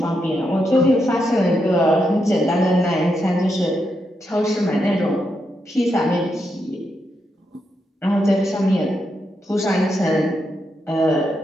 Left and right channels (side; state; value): both; normal; correlation 0.83